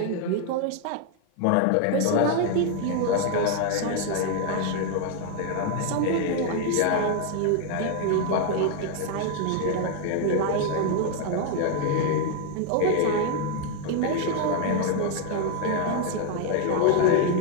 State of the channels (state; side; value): different; both; correlation 0.00